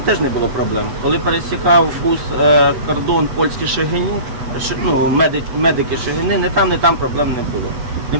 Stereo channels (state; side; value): late; left; 8.1 ms